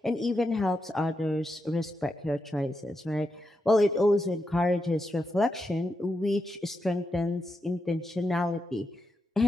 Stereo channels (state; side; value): normal; both; correlation 0.85